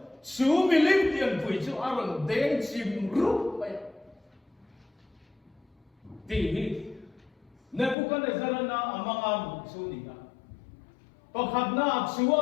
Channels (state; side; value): drops out; right; at 8.0 s